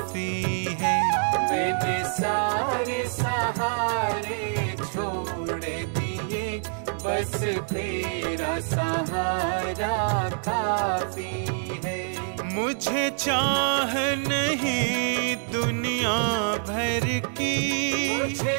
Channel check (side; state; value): left; silent; 61 dB below the other